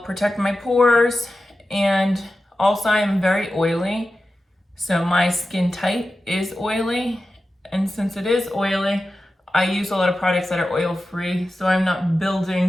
protect my pores. And also I am very oily. So my skin type is oily, and since it is oily, I use a lot of products that are oil free, so I'm not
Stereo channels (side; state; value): both; normal; correlation 0.93